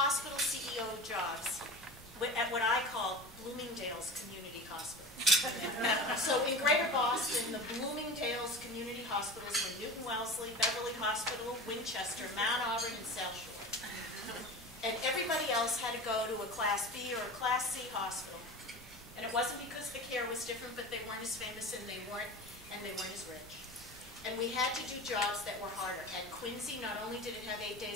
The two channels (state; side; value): normal; both; correlation 0.32